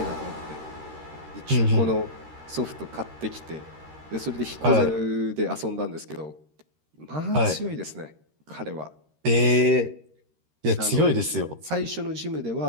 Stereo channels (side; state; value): left; late; 13 ms